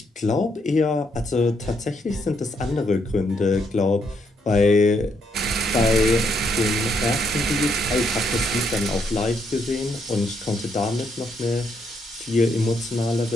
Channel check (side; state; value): both; normal; correlation 0.75